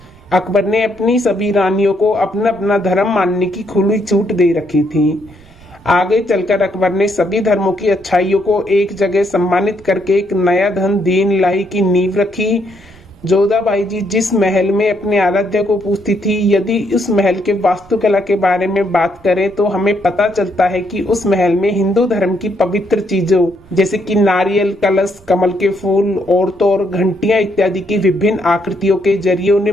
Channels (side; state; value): right; noise; rumble, 27 dB below the sound